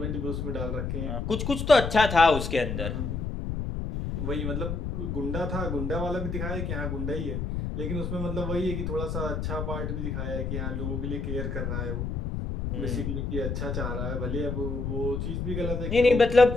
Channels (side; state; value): left; noise; rumble, 3 dB below the sound